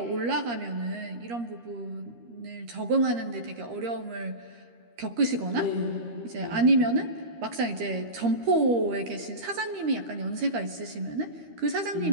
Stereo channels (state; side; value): late; left; 13 ms